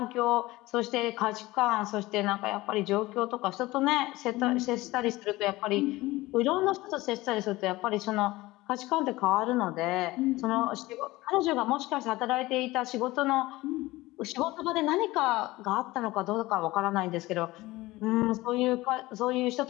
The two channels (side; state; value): right; quieter; 19.3 dB